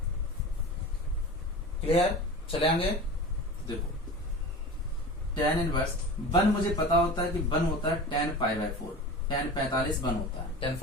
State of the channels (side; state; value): both; normal; correlation 0.33